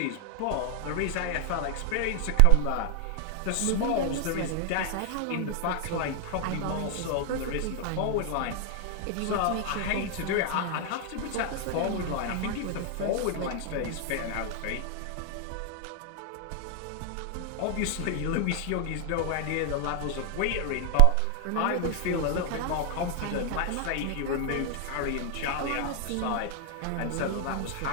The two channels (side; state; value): both; different; correlation 0.00